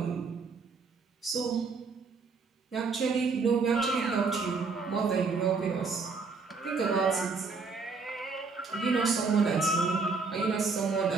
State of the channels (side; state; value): left; quieter; 4.6 dB